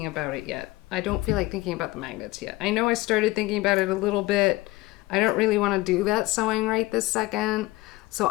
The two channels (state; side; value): quieter; right; 19.6 dB